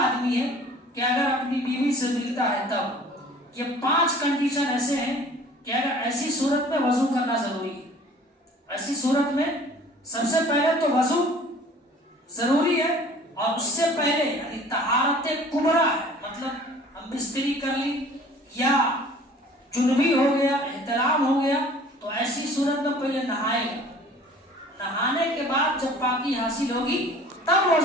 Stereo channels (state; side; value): normal; both; correlation 0.49